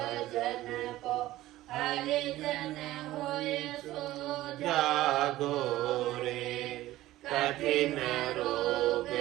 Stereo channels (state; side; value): quieter; left; 15.9 dB